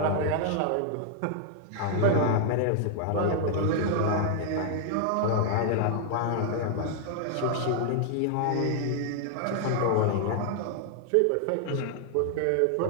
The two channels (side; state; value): both; different; correlation 0.00